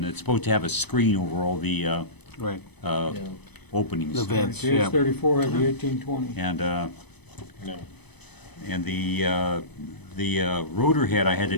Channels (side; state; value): right; late; 0.99 ms